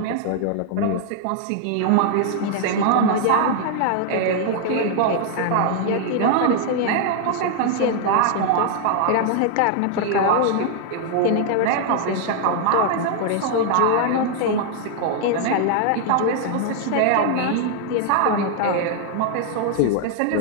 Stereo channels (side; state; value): both; different; correlation 0.00